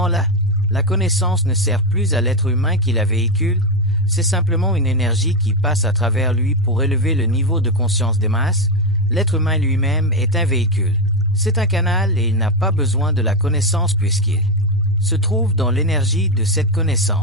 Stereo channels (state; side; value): normal; both; correlation 0.09